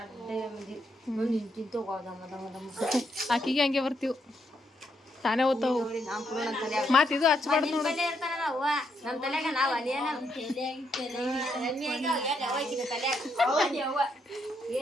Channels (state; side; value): normal; both; correlation 0.77